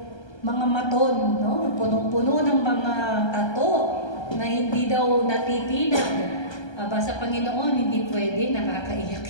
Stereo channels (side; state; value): right; late; 1.3 ms